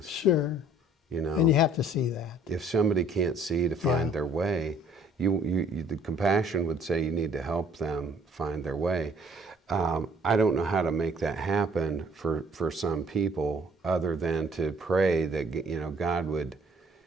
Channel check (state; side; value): normal; both; correlation 0.58